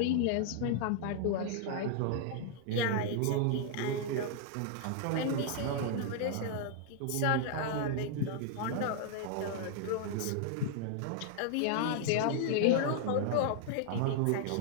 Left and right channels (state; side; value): different; both; correlation -0.01